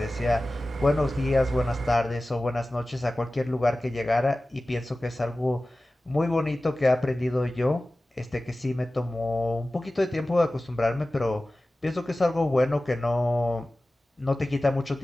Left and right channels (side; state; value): both; normal; correlation 0.96